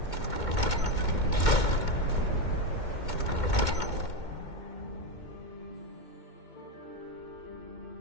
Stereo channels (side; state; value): right; late; 2.2 ms